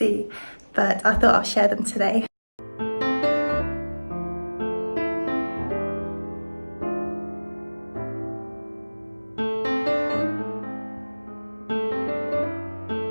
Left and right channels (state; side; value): inverted; both; correlation -1.00